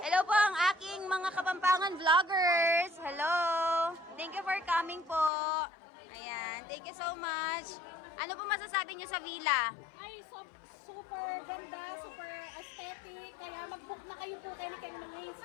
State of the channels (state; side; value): drops out; right; at 5.3 s